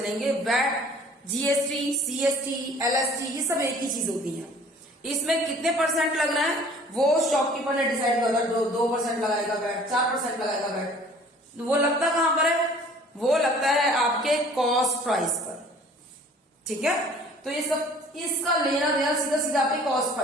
वैट, जीएसटी, सीएसटी, एलएसटी, ये सब एक ही चीज होती है। इसमें कितने परसेंट लग रहा है वो शॉपकीपर ने डिसाइड किया। 2% लगाएगा वैट, 4% लगाएगा वैट। वो लगता कहां पर है? वो लगता है आपके कॉस्ट प्राइस पर। ठीक है, तो ये सब इसका लेना देना सीधा सीधा आपके कॉस्ट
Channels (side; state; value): both; normal; correlation 0.51